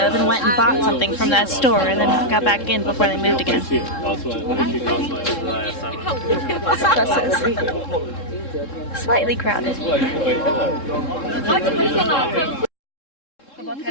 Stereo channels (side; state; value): right; late; 3.7 ms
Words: and went and bought something from that store and then got back in before they moved again. Buses. Slightly crowded.